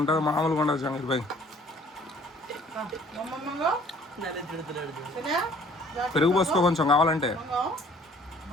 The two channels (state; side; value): normal; both; correlation 0.56